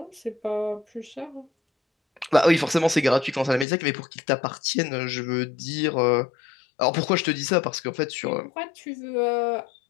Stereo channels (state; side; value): drops out; right; at 3.7 s